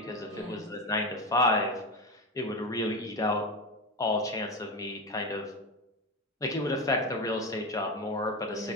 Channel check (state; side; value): normal; both; correlation 0.18